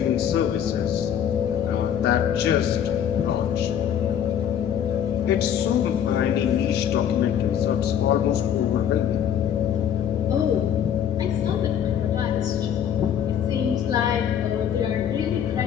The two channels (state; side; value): quieter; right; 9.2 dB